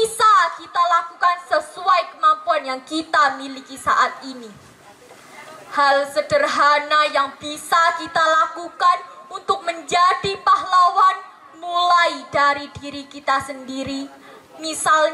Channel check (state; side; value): identical; both; correlation 1.00